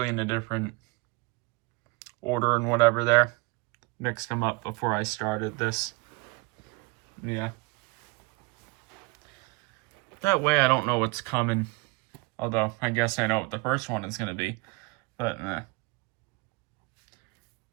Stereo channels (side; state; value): left; quieter; 26.2 dB